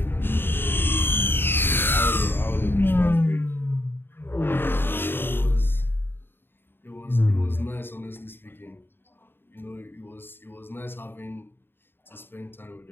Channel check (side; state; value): right; late; 0.10 ms